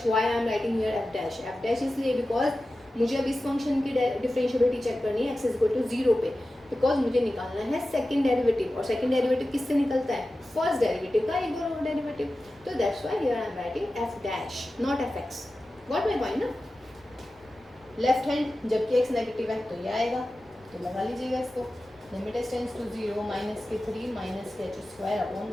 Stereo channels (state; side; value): noise; left; rumble, 29 dB below the sound